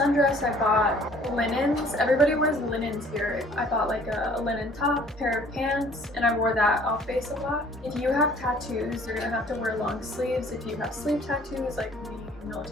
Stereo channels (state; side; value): normal; both; correlation 0.55